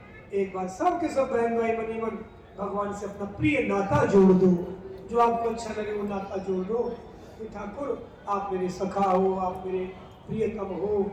एक बार सब के सब बहन भाई बनी मन भगवान से अपना प्रिय नाता जोड़ दो, जो आपको अच्छा लगे वो नाता जोड़ दो कि ठाकुर आप मेरे सखा हो, आप मेरे प्रियतम हो,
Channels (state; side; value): identical; both; correlation 1.00